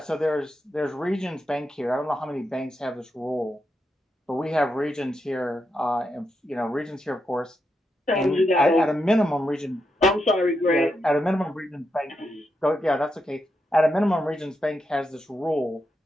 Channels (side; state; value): both; normal; correlation 0.84